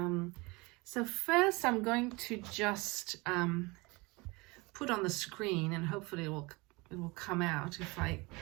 So first I'm going to just put on the screen, and hopefully it will come out if I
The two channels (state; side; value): quieter; left; 25.3 dB